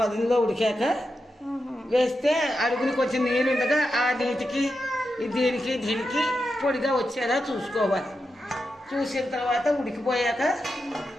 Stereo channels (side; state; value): both; normal; correlation 0.88